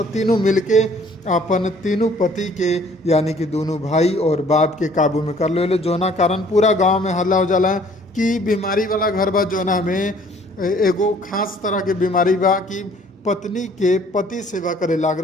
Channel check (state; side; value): normal; both; correlation 0.57